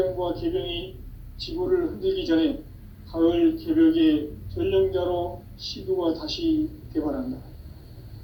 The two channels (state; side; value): identical; both; correlation 1.00